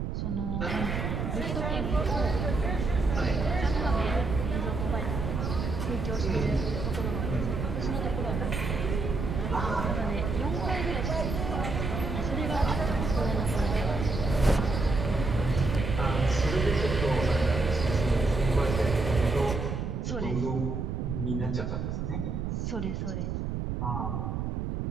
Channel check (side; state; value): right; noise; rumble, 2 dB below the sound